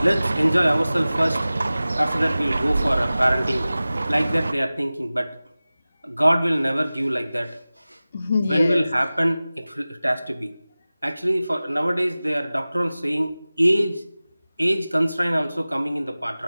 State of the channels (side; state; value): both; inverted; correlation -0.97